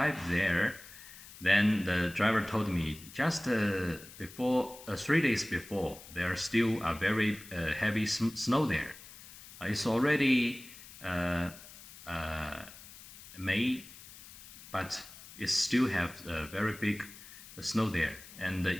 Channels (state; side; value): noise; left; hiss, 17 dB below the sound